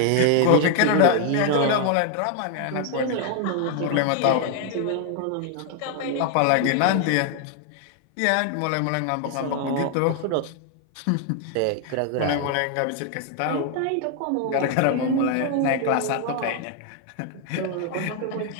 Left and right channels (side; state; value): both; different; correlation 0.00